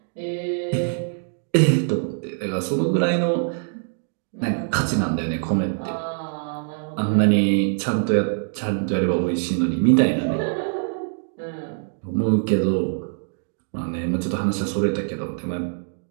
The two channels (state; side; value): silent; left; digital silence